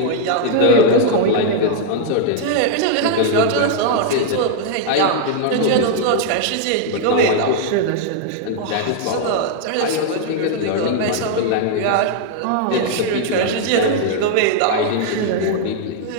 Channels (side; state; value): both; different; correlation -0.01